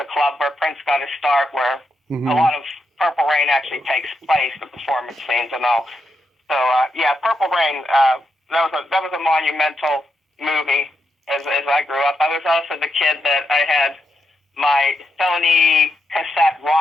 club where Prince got his start, where a lot of Purple Rain actually takes place, the performance scenes and all. So, Purple Rain... That was a monumental movie as I grew up. I was also the kid that I had my Sony cassette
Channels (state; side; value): normal; both; correlation 0.84